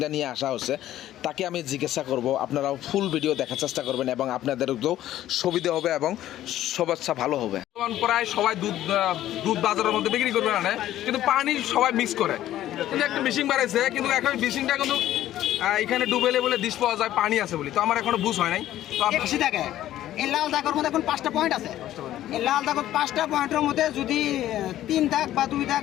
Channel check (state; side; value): quieter; right; 13.2 dB